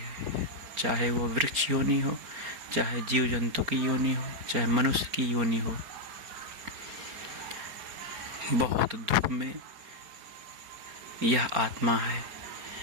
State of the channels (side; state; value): left; late; 4.8 ms